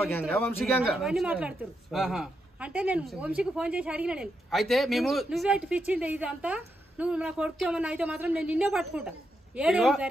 అవన్నీ మాట్లాడుతారు. అంటే నేను వంశీకి ఫోన్ చేసి అడిగిన నేను అయితే మేము నువ్వే పిచ్చింది ఇదంతా నువ్వు నా కొడుకు ఏమన్నా అయితే మాత్రం నేను నిన్నే పట్టుకుంటా.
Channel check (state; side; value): normal; both; correlation 0.83